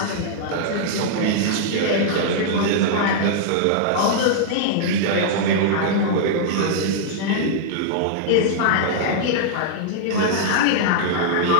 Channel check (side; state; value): both; different; correlation -0.01